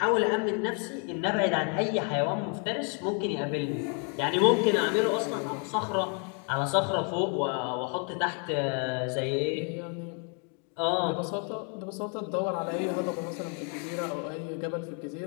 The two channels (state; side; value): quieter; right; 39.8 dB